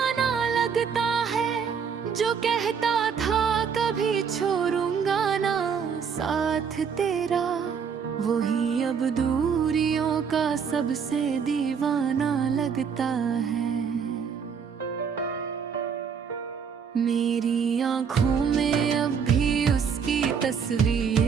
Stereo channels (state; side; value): quieter; left; 6.6 dB